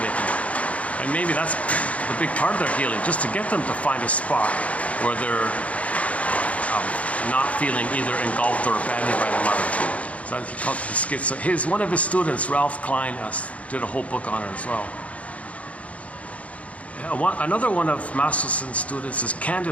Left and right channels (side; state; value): right; late; 0.066 ms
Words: can, and maybe that's a big part of their healing, just to get them to find a spot where they're not feeling either engulfed or abandoned by their mother. So he called it the schizo. One of his students, Ralph Klein, did a whole book on it as well. Another one of Masterson's students is